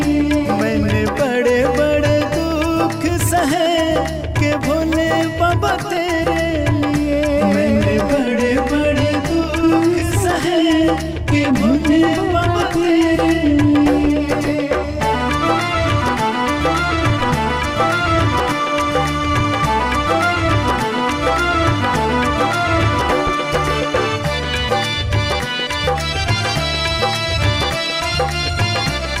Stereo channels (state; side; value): identical; both; correlation 1.00